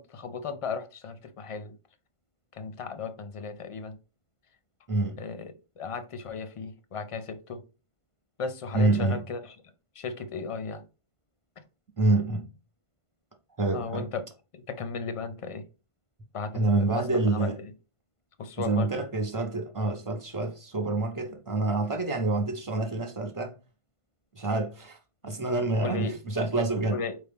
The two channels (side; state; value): right; late; 1.5 ms